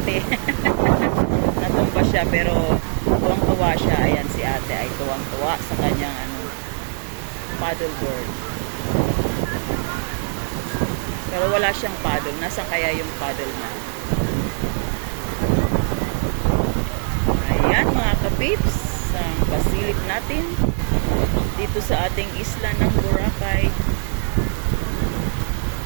Natumba siya pero tuwang-tuwa siya. Ayan, si ate ay tuwang-tuwa sa kanyang paddleboard. Pero wala siyang paddle. Nasaan kaya yung paddle na? Ayan mga kapips, ang pasilip natin dito sa ating isla ng Boracay.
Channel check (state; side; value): silent; left; 57 dB below the other